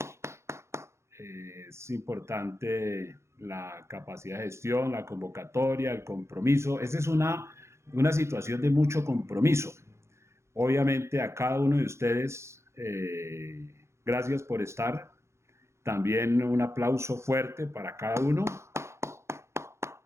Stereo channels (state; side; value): late; left; 0.13 ms